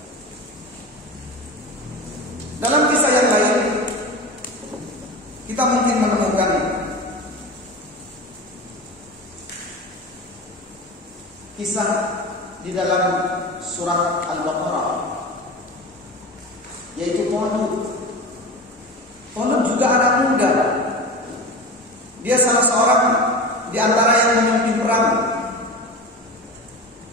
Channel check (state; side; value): normal; both; correlation 0.29